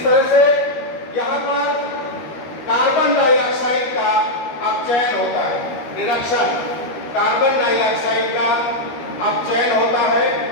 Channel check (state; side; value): late; right; 13 ms